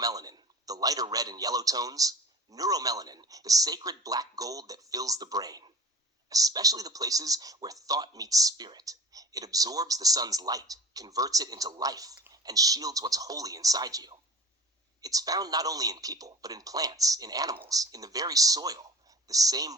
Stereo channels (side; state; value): both; normal; correlation 0.39